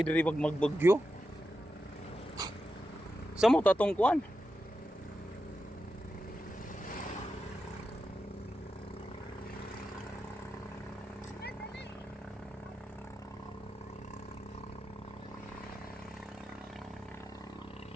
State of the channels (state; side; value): normal; both; correlation 0.89